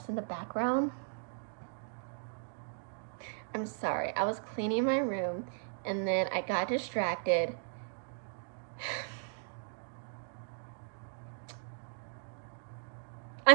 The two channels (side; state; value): left; silent; digital silence